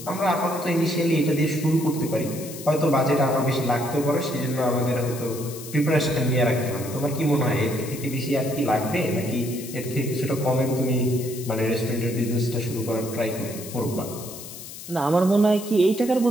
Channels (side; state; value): left; noise; hiss, 13 dB below the sound